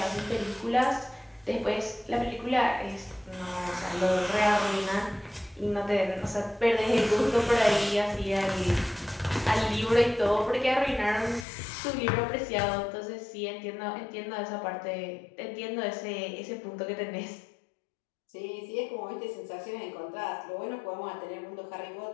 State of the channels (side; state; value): right; drops out; at 11.5 s